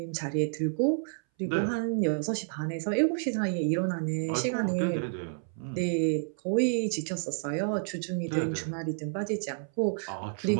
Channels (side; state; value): left; silent; 58 dB below the other